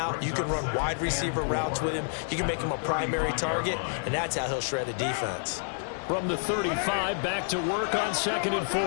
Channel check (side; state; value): right; silent; digital silence